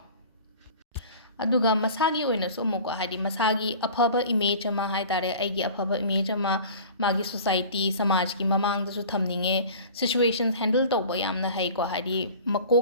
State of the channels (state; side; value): inverted; both; correlation -0.42